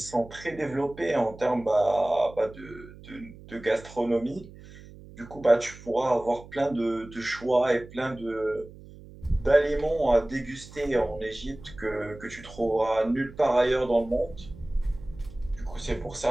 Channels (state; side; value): noise; right; hum, 18 dB below the sound